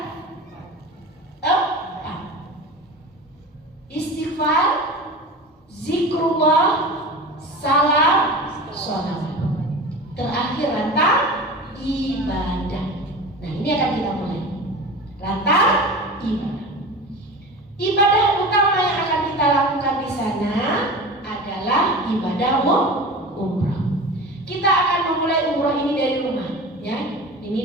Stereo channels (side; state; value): both; normal; correlation 0.33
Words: 4. Istighfar, zikrullah, salam, sholawat. Terakhir rantang ibadah. Nah, ini akan kita mulai. Rantang ibadah. Ibadah utama yang akan kita lakukan di sana adalah ibadah umrah. Kita akan memulai umrah ini dari rumah, ya. Ini